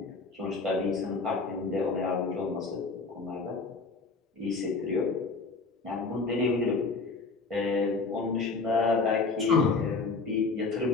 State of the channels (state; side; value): quieter; right; 4.0 dB